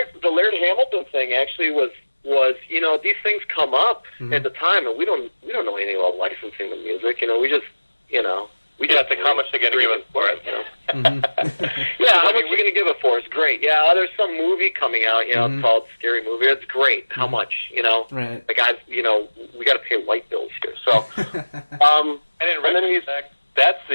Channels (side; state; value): both; inverted; correlation -1.00